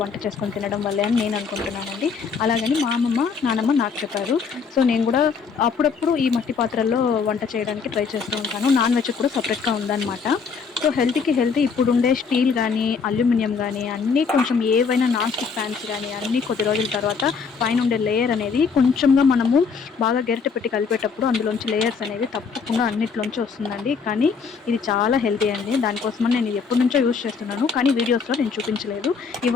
వంట చేసుకొని తినడం వల్లే అని నేను అనుకుంటున్నానండి. అలాగని మా అమ్మమ్మ, నానమ్మ నాకు చెప్పారు. సో, నేను గూడా అప్పుడప్పుడు ఈ మట్టి పాత్రల్లో వంట చేయడానికి ట్రై చేస్తూ ఉంటాను. నాన్ వెజ్ కూడా సెపరేట్‌గా ఉందనమాట. సో, హెల్త్‌కి హెల్తీ ఇప్పుడుండే స్టీల్ గానీ, అల్యూమినియం గానీ అన్నీ కొంచెం ఏవైనా నాన్ స్టిక్ ప్యాన్స్ గానీ అన్నీ కొద్ది రోజుల తర్వాత పైనుండే లేయర్ అనేది కొంచెంగా మనము బాగా గరిటె పెట్టి కలిపేటప్పుడు అందులోంచి లేయర్స్ అనేవి తప్పకుండా అన్నిట్లోంచి వస్తుందండి. కానీ ఇది చాలా హెల్తీ అండి. దానికోసమని నేను ఇది ఎప్పటినుంచో యూజ్ చేస్తున్నాను. కానీ వీడియోస్‌లో నేను చూపించలేదు.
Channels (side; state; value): right; quieter; 5.6 dB